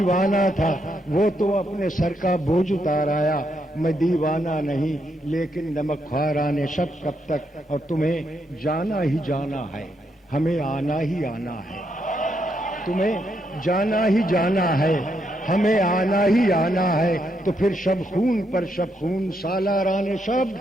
تھا، وہ تو اپنے سر کا بوجھ اتار آیا. میں دیوانہ نہیں لیکن نمک خواران شب کب تک. اور تمہیں جانا ہی جانا ہے، ہمیں آنا ہی آنا ہے. تمہیں جانا ہی جانا ہے، ہمیں آنا ہی آنا ہے. تو پھر شب خون پر شب خون سالاران شب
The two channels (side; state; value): both; normal; correlation 0.78